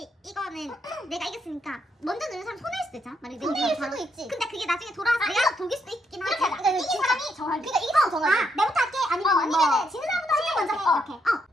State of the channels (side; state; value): both; normal; correlation 0.77